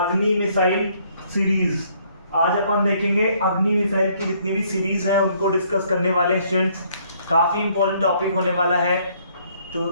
missile series. आज अपन देखेंगे अग्नि मिसाइल की जितनी भी सीरीज हैं उनको डिस्कस करने वाले हैं स्टूडेंट्स। काफ़ी इंपॉर्टेंट टॉपिक होने वाला है। तो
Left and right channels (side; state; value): both; inverted; correlation -0.65